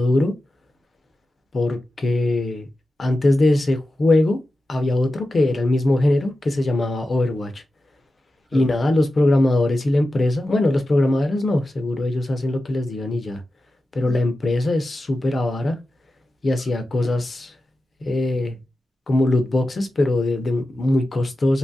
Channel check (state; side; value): normal; both; correlation 0.92